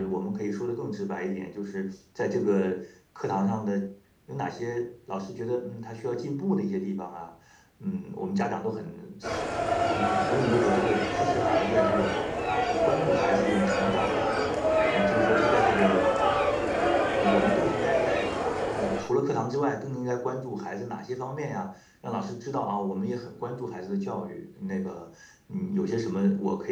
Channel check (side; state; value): both; identical; correlation 1.00